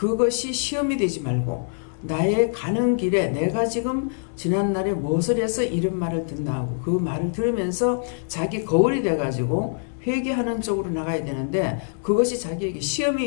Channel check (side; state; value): right; silent; 60 dB below the other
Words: 시험이 되지 말고 나의 가는 길에 내가 지금 지난날에 무엇을 해서 이런 말을 듣나 하고 그 말을 들으면서 자기 거울이 돼가지고 회개하는 쪽으로 나가야 되는데 그것이 자기에게